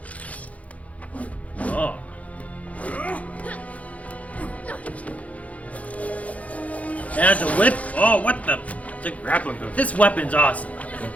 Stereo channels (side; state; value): right; late; 0.067 ms